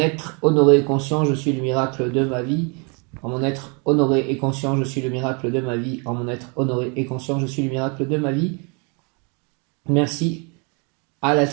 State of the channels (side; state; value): left; quieter; 33.7 dB